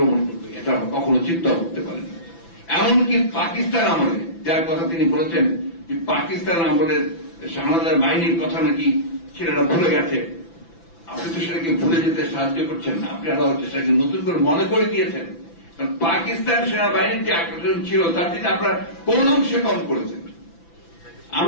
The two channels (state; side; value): late; right; 6.0 ms